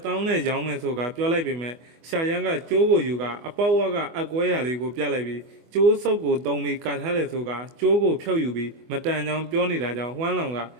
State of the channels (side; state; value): left; late; 24 ms